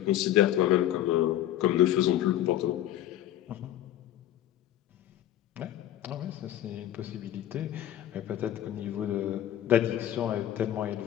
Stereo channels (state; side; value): quieter; right; 12.4 dB